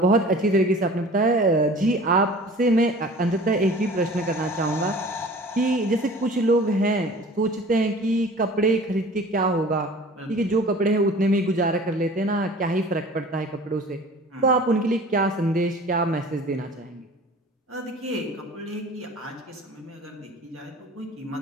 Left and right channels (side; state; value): both; normal; correlation 0.44